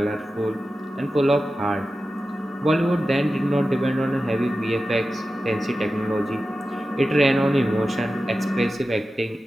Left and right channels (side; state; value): both; normal; correlation 0.93